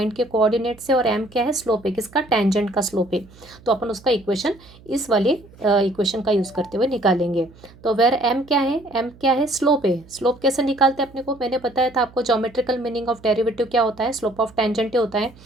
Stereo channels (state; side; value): noise; right; hum, 24 dB below the sound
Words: के कोऑर्डिनेट से, और m क्या है, स्लोप है किसका, टेंजेंट का स्लोप है। तो अपन उसका इक्वेशन इस वाले इक्वेशन का यूज़ करते हुए निकालेंगे। तो वेर m क्या है, m क्या है, स्लोप है। स्लोप कैसे निकालते हैं अपने को, मैंने बताया था आपको ज्योमेट्रिकल मीनिंग ऑफ डेरिवेटिव क्या होता है, स्लोप ऑफ टेंजेंट होता है।